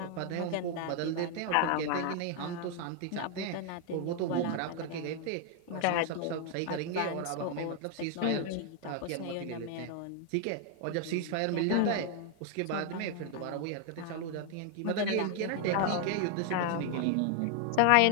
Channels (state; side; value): different; both; correlation 0.00